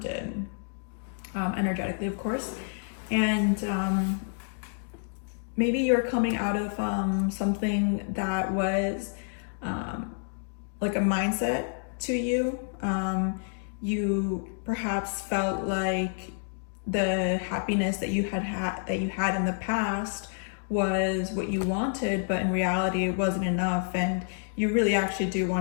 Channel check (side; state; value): right; silent; digital silence